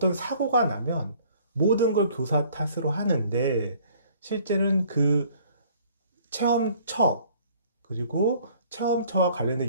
사고가 나면 모든 걸 교사 탓으로 하는데, 실제는 그 체험처, 그리고 체험처와 관련된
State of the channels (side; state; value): both; inverted; correlation -0.56